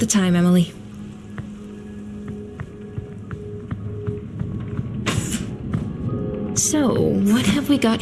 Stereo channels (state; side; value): identical; both; correlation 1.00